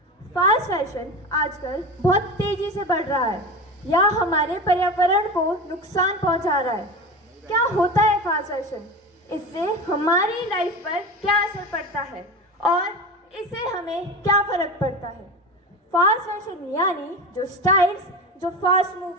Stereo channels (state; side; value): normal; both; correlation 0.26